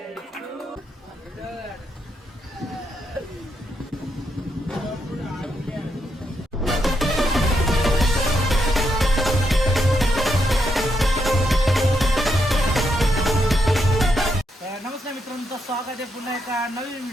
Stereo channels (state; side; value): normal; both; correlation 0.80